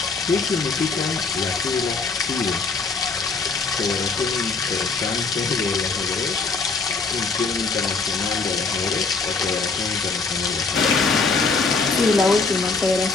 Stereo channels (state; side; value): quieter; right; 4.3 dB